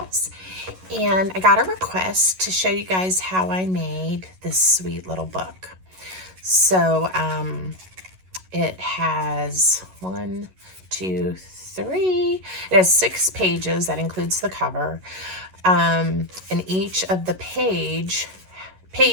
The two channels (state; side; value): late; left; 11 ms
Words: and I got a request to show you guys how I made this sweet little book. So it has 1, 2, 3, it has 6 pages, that includes the cover, and each of the pages,